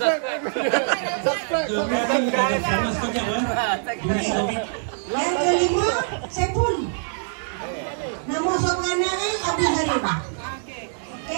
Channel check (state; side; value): silent; left; digital silence